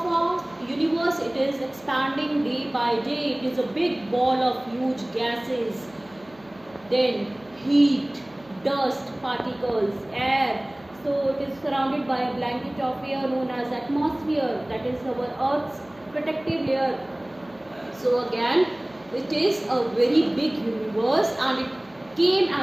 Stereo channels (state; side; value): noise; right; hum, 27 dB below the sound